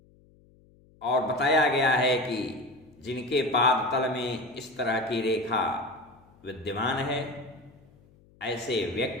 और बताया गया है कि जिनके पाद तल में इस तरह की रेखा विद्यमान है, ऐसे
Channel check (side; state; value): left; noise; hum, 29 dB below the sound